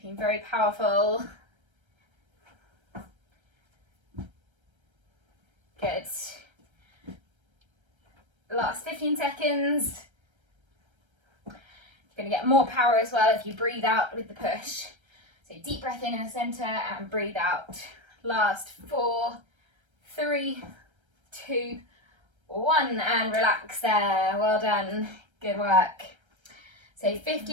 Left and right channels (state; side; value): late; left; 1.3 ms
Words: very powerful. Good. Last 15 seconds. You're going to get more power as well if you breathe out with the push. So deep breath in the centre and breathe out. Last 4, 3, 2, 1, and relax there. Well done. Good work. So